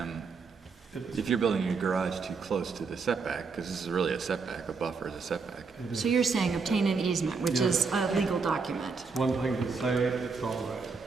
if you're building your garage too close to the setback, because this is really a setback, a buffer is a setback. So you're saying obtain an easement, which is a legal document. It's one thing to say it's all right.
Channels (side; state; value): left; quieter; 4.8 dB